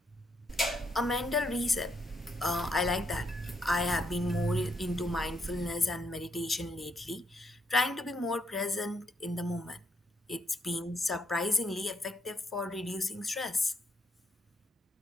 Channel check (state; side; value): normal; both; correlation 0.76